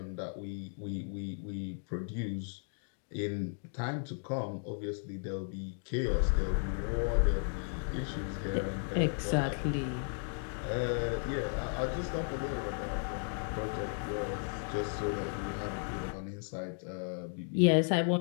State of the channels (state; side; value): silent; right; 54 dB below the other